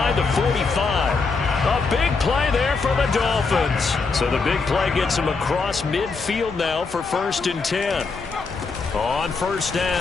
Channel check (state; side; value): quieter; right; 4.4 dB